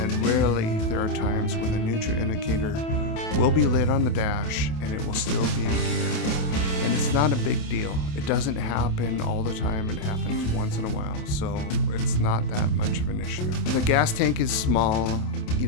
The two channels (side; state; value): right; late; 28 ms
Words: rarely there are times when the neutral indicator will be lit on the dash and it will still be in gear. And it's not a big deal. It doesn't happen all the time. It happens once in a while, so it's not that much of an issue. The gas tank is small,